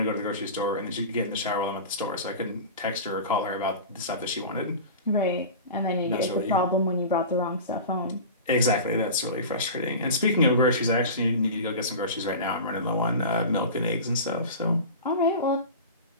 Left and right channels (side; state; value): both; inverted; correlation -0.32